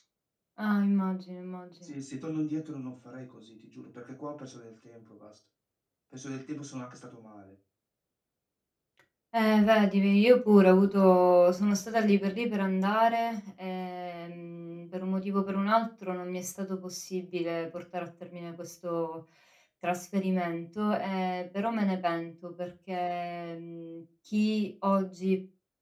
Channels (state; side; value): identical; both; correlation 1.00